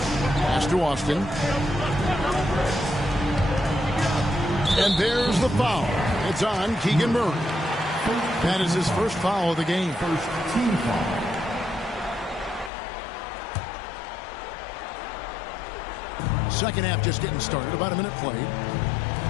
to Austin. And there's the foul. It's on Keegan Murray. That is his first foul of the game. First team foul. Second half just getting started. About a minute played.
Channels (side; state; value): right; drops out; at 12.7 s